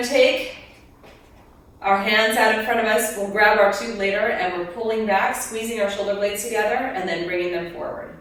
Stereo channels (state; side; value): identical; both; correlation 1.00